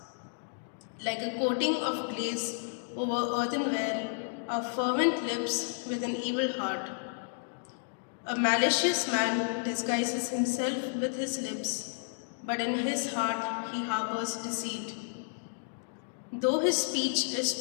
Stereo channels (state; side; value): silent; right; digital silence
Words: Like a coating of glaze over earthenware are fervent lips with an evil heart. A malicious man disguises himself with his lips, but in his heart he harbors deceit. Though his speech is